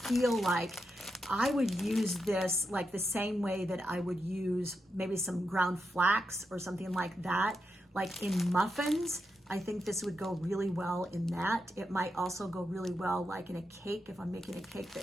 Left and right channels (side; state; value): both; normal; correlation 0.86